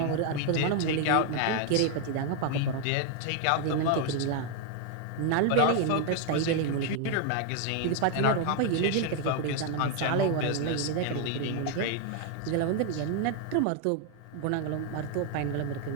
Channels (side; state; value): both; different; correlation 0.00